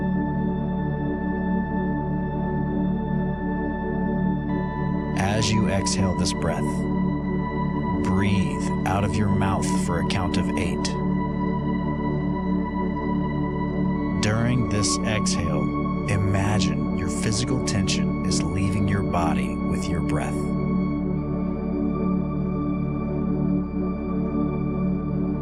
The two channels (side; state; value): both; identical; correlation 1.00